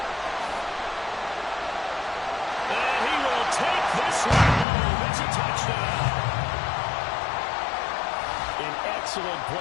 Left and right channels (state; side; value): drops out; right; at 4.7 s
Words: And he will take this one home. It's a touchdown. An excellent